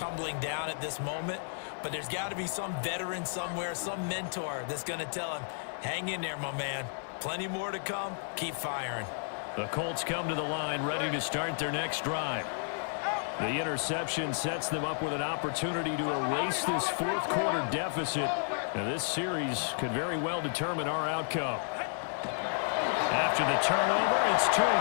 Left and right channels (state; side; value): silent; right; digital silence